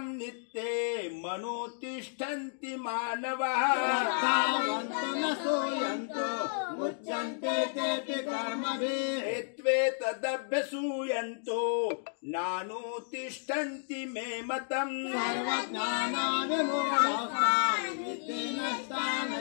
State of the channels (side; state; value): right; silent; digital silence